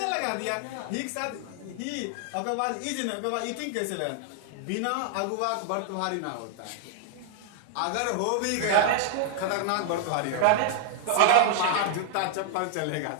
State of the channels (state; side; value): different; both; correlation -0.01